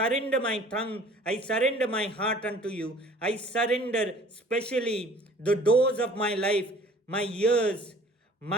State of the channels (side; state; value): both; normal; correlation 0.50